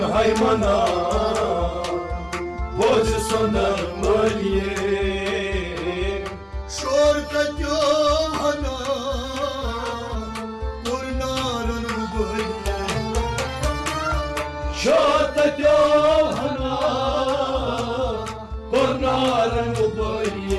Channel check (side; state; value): both; identical; correlation 1.00